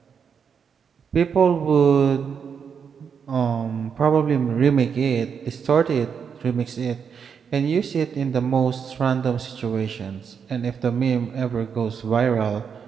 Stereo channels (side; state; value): left; quieter; 6.8 dB